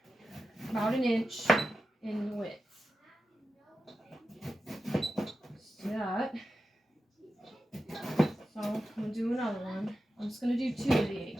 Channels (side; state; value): both; normal; correlation 0.91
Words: about 1 inch in width. Just do that. So I'm going to do another one. I'm just going to do 2 of the